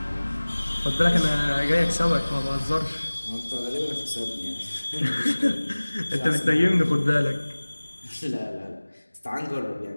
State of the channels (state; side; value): inverted; both; correlation -1.00